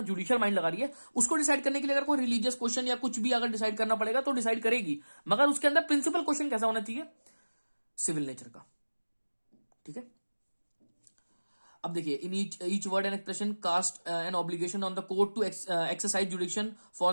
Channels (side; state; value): both; inverted; correlation -1.00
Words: जुडिशियल माइंड लगा रही है, उसको डिसाइड करने के लिए अगर कोई रिलीजियस क्वेश्चन या कुछ भी अगर डिसाइड करना पड़ेगा तो डिसाइड करेगी, मगर उसके अंदर प्रिंसिपल क्वेश्चन कैसा होना चाहिए? सिविल नेचर का, ठीक है। अब देखिए, in each word and expression cast an obligation on the court to exercise jurisdiction for